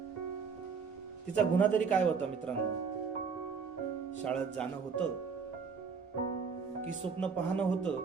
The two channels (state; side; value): quieter; left; 5.7 dB